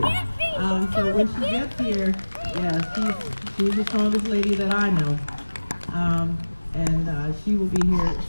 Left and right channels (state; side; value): inverted; both; correlation -1.00